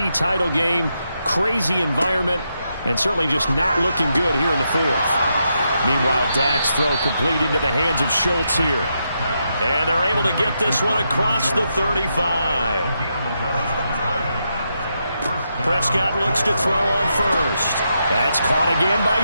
title game, crazy environment, and certainly just not looking good here in the fourth. Meanwhile, Dak's throw complete into the hands of Schultz here. And they're able to get this one across the 35. Prescott looks to throw on first. That's caught again by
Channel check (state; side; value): inverted; both; correlation -0.83